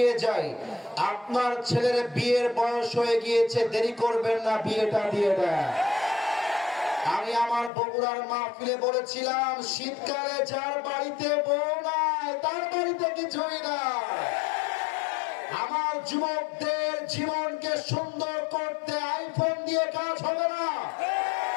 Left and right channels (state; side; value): drops out; right; at 7.7 s